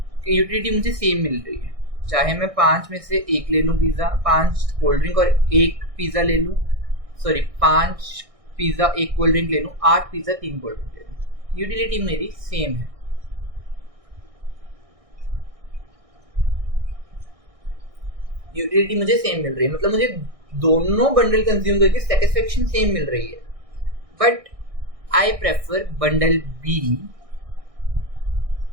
कि यूटिलिटी मुझे सेम मिल रही है, चाहे मैं 5 में से 1 ले लूँ पिज़्ज़ा, 5 कोल्ड ड्रिंक और 1 पिज़्ज़ा ले लूँ, सॉरी 5 पिज़्ज़ा 1 कोल्ड ड्रिंक ले लूँ, 8 पिज़्ज़ा 3 कोल्ड ड्रिंक ले लूँ, यूटिलिटी मेरी सेम है। यूटिलिटी मुझे सेम मिल रही है, मतलब मुझे दोनों बंडल कंज्यूम करके सेटिस्फेक्शन सेम मिल रही है, but I prefer bundle B.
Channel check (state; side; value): late; left; 1.6 ms